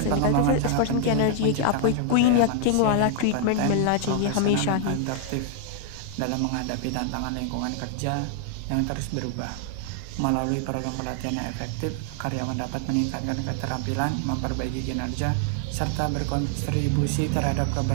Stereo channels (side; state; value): both; different; correlation 0.00